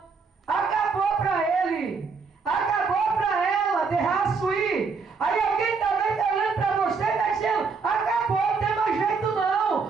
Acabou para ele. Acabou para ela, derraço ir. Aí alguém também está olhando para você e está dizendo, acabou, não tem mais jeito não.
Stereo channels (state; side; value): quieter; left; 4.9 dB